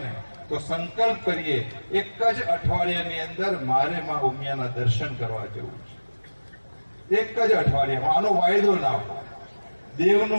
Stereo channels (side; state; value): both; inverted; correlation -1.00